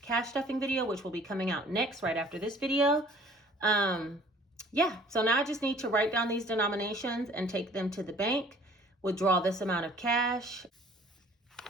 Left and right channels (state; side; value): normal; both; correlation 0.53